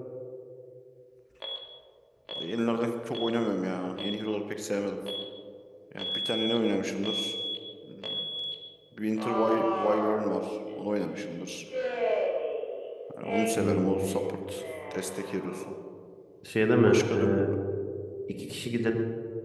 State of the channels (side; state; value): both; identical; correlation 1.00